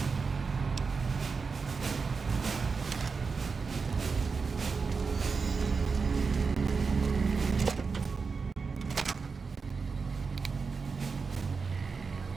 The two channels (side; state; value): left; quieter; 4.9 dB